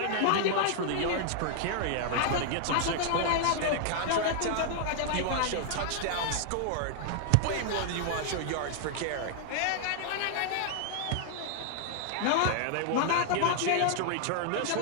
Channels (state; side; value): different; both; correlation -0.01